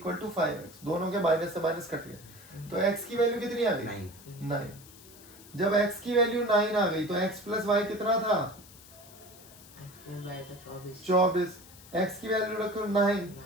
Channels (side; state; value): left; noise; hiss, 20 dB below the sound